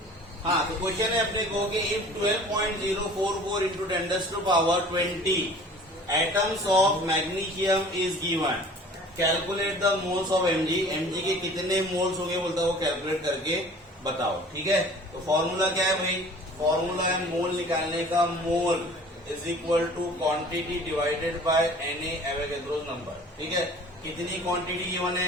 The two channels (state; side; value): normal; both; correlation 0.47